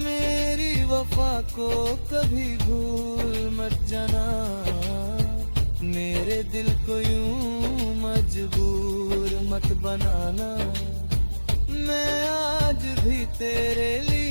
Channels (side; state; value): both; inverted; correlation -1.00